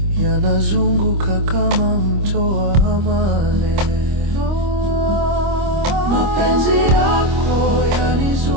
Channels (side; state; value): left; late; 25 ms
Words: yanazunguka kama mto wa amani. mapenzi yako